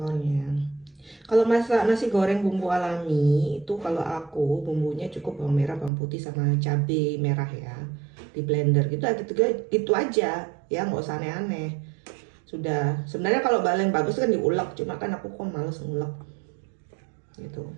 Kalau masak nasi goreng bumbu alami itu, kalau aku bumbunya cukup bawang merah, bawang putih sama cabai merah ya, di blender gitu aja ya, nggak usah aneh-aneh. Sudah, sebenarnya kalau paling bagus kan diulek, cuma kan aku kok males ngulek gitu,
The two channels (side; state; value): left; drops out; at 5.9 s